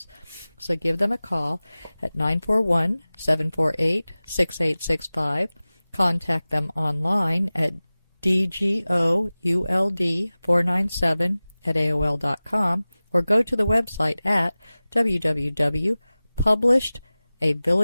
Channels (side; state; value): both; inverted; correlation -0.98